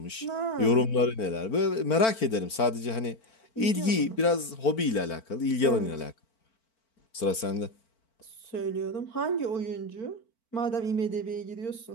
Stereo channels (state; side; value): late; right; 4.4 ms